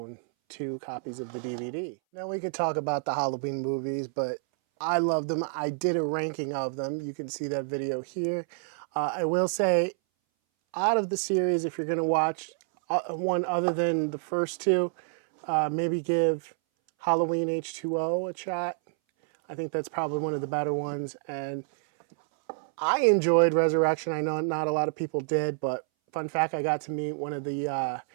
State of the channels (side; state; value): left; silent; 59 dB below the other